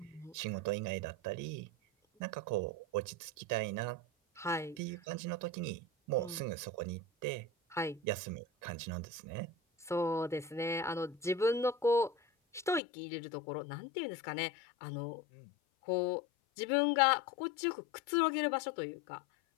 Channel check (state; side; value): drops out; right; at 12.8 s